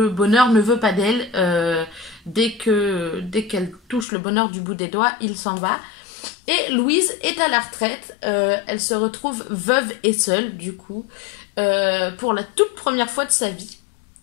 bonheur ne veut pas d'elle. Dès qu'elle touche le bonheur du bout des doigts, il s'en va. Et Louise est à la retraite, elle se retrouve veuve et seule du coup, pour la toute première fois de sa vie.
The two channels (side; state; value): right; drops out; at 4.0 s